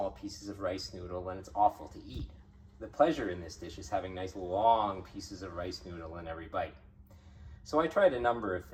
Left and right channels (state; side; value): identical; both; correlation 1.00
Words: pieces of rice noodle, and it's awful to eat. The pleasure in this dish is having nice long pieces of rice noodle in every bite. So I tried a number of